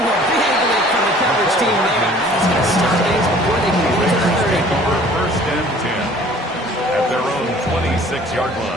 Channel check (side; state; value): both; normal; correlation 0.51